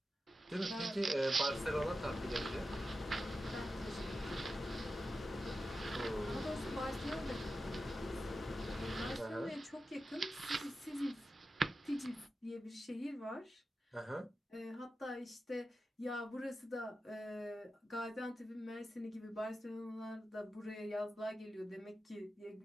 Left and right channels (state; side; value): normal; both; correlation 0.91